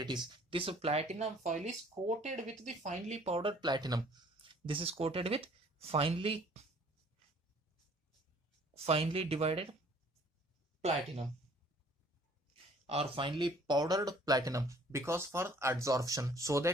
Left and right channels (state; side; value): normal; both; correlation 0.56